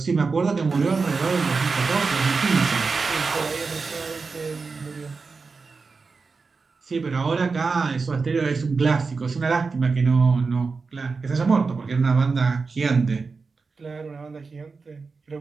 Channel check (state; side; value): quieter; left; 4.5 dB